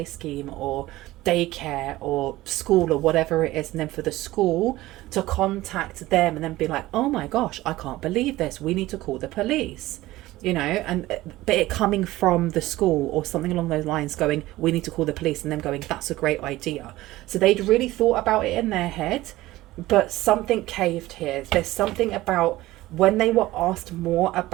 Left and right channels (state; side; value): quieter; left; 17.3 dB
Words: scheme or daycare or school or whatever it is. And then for the school to contact them and then be like, oh my gosh, I can't believe this. We need to call the police. You know, but it coming from the school or something along those lines going, we need to call the police, and them going, that's a great idea. So they'd really thought about it in their head, but something caved here. There's something about when they were asked more